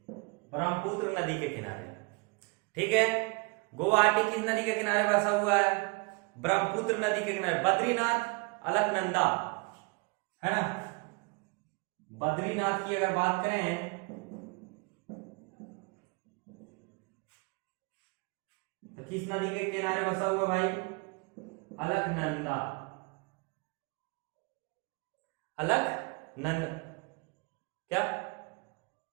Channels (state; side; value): quieter; left; 30.2 dB